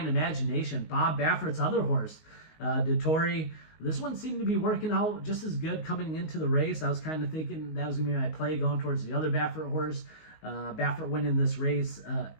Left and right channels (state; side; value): late; right; 19 ms